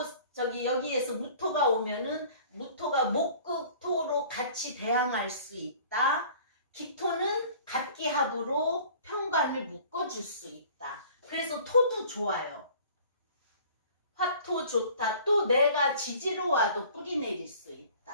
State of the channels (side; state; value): both; inverted; correlation -0.49